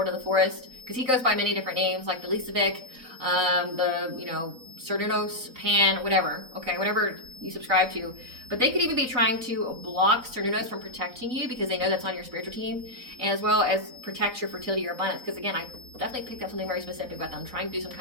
of the Forest, because he goes by many different names, like the Lisavic, the, you know, Cernunnos, Pan, whatever, okay, whatever you subscribe to. But they could even be trying to block Cernunnos from protecting you because they know that's on your spiritual team, and as well as protect your fertility, your abundance. Because again, I definitely picked up something very specific about them, trying to do some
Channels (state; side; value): late; left; 3.9 ms